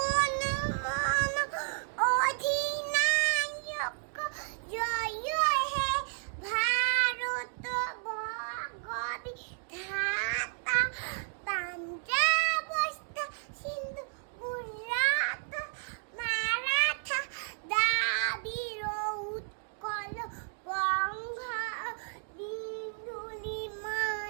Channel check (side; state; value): left; silent; 56 dB below the other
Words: মন অধিনায়ক জয় হে ভারত ভগবিধাতা পাঞ্জাব সিন্ধু গুজরাট মারাঠা দ্রাবিড় উৎকল বঙ্গ বিন্দু